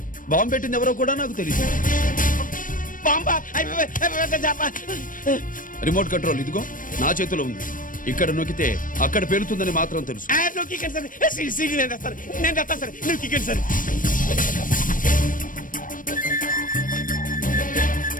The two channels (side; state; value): right; late; 0.39 ms